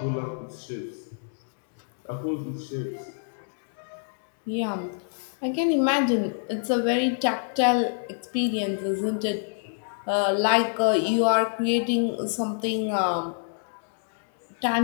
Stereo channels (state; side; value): silent; right; digital silence